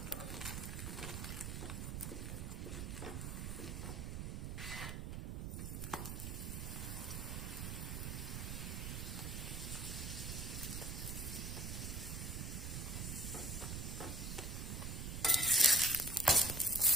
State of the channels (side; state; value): right; noise; rumble, 4 dB below the sound